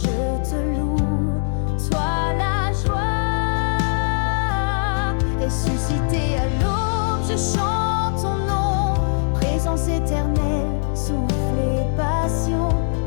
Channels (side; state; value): right; silent; digital silence